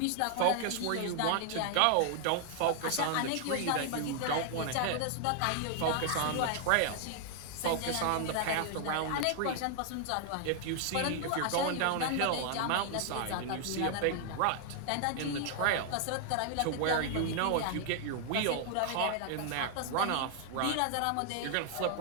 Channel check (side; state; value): both; different; correlation 0.00